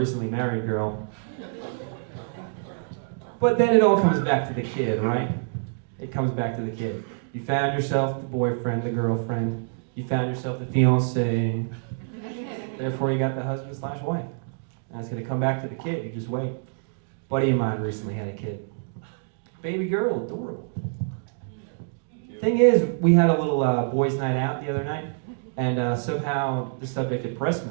married girl. But then it all comes back to the kid, right? It comes back to the kid. You found yourself the boyfriend, the girlfriend. You found yourself the fiancé. Therefore, you got the husband/wife. And it's going to come back to the kid. You just wait. A buddy of mine recently had a kid. Baby girl, adorable. Thing is, we had a little boys' night out the other night, and somehow the subject of breast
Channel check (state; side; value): silent; left; digital silence